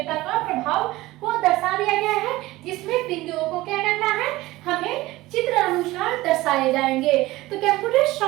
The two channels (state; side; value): quieter; left; 18.4 dB